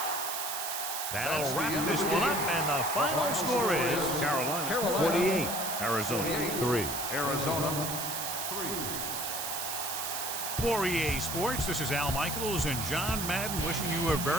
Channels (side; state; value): right; noise; hiss, 3 dB below the sound